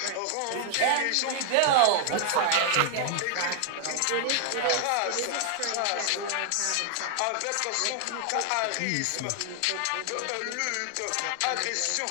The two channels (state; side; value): different; both; correlation 0.00